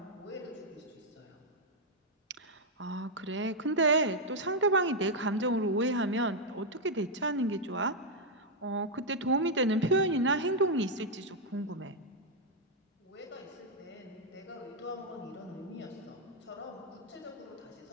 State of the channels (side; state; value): both; normal; correlation -0.01